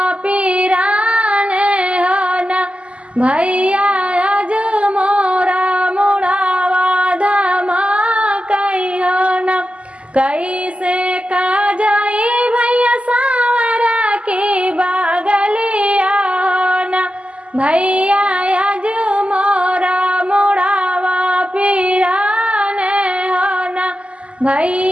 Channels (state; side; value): late; left; 0.058 ms